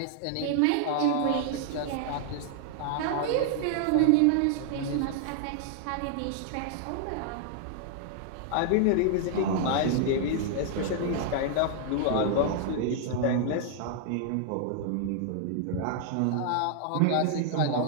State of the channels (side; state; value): both; different; correlation -0.01